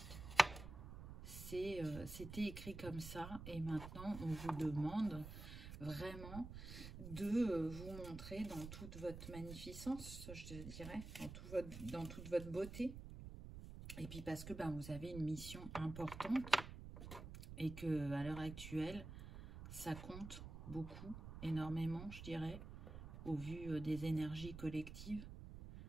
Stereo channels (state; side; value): noise; right; rumble, 10 dB below the sound